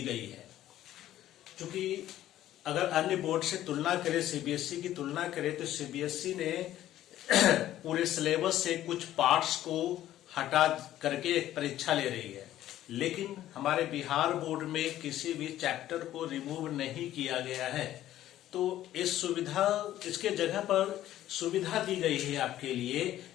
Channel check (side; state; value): right; quieter; 13.2 dB